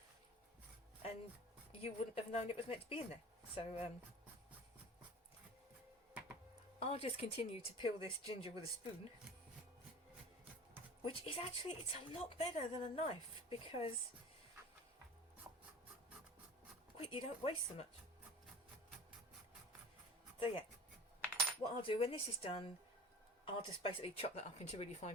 and you wouldn't have known it was meant to be in there. So I'll just continue to peel this ginger with a spoon, which is actually, it's a lot better than a knife because you don't waste so much. So yeah, what I'll do when this is done, I'll just basically chop that up into really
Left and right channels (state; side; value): normal; both; correlation 0.39